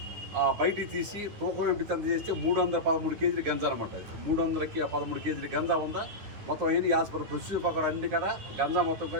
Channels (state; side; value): late; left; 9.7 ms